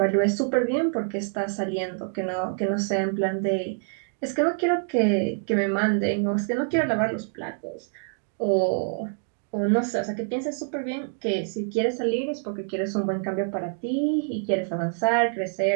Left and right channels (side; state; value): left; silent; 60 dB below the other